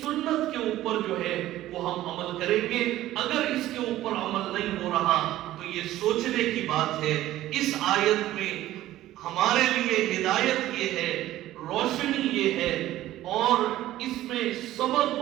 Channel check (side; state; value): left; quieter; 14.6 dB